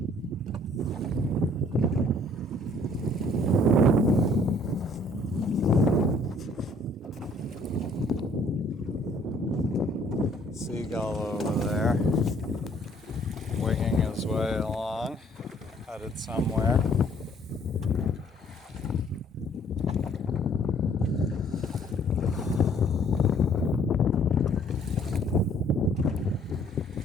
seagull over there, winging his way along, headed somewhere.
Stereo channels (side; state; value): both; normal; correlation 0.60